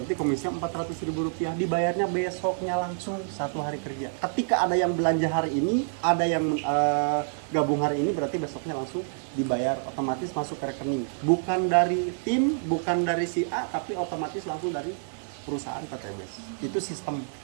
komisinya Rp400.000, dibayarnya besoknya langsung 1 hari kerja. Ketika ada yang belanja hari ini, ada yang gabung hari ini, berarti besoknya langsung dibayar, otomatis masuk ke rekening. Bukan dari tim, bukan dari si A, tapi otomatis langsung dari perusahaan PTBS. Itu sistem.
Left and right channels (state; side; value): silent; left; 55 dB below the other